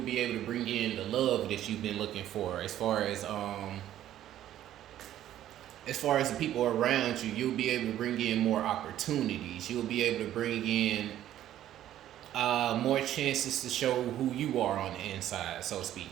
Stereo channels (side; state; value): left; quieter; 12.2 dB